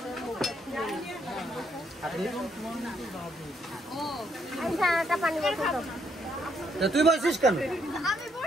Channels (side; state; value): both; normal; correlation 0.73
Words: তুই বলছিস কেন?